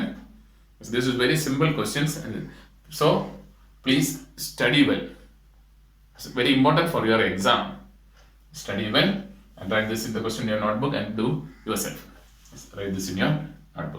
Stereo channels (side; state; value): both; identical; correlation 1.00